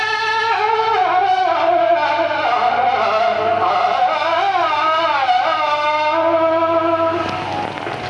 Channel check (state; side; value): identical; both; correlation 1.00